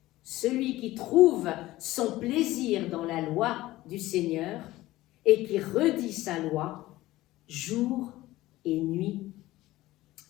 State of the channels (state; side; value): quieter; right; 17.0 dB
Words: Celui qui trouve son plaisir dans la loi du Seigneur et qui redit sa loi jour et nuit.